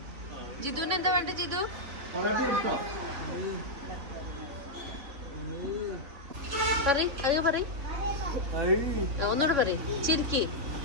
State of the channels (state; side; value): late; left; 3.6 ms